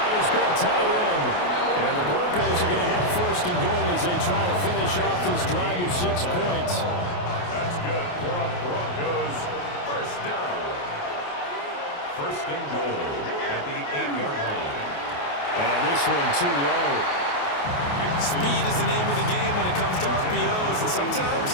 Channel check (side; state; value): right; late; 28 ms